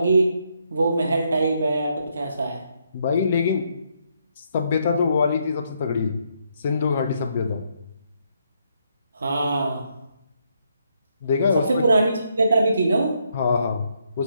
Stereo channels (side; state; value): both; inverted; correlation -0.75